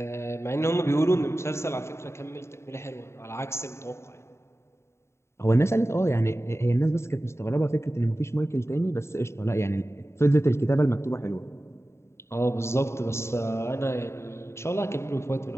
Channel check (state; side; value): late; right; 0.13 ms